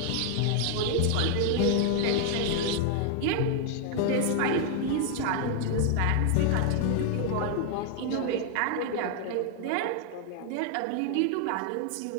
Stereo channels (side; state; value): both; different; correlation 0.00